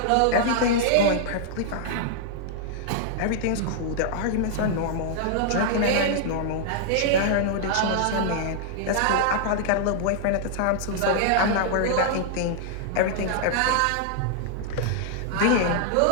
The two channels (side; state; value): both; different; correlation -0.01